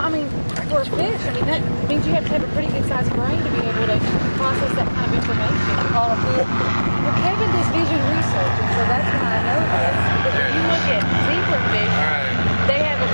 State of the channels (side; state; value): both; inverted; correlation -1.00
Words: mean, for a fish, I mean, that means you have to have a pretty good sized brain to be able to process that kind of information. Well, Kevin does vision research, and so that's why I know this. Because if you look at zebra fish, Alright. they have a